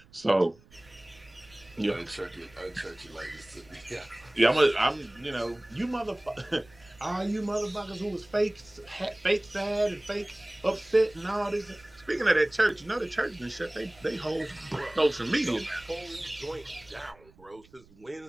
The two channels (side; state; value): right; noise; rumble, 27 dB below the sound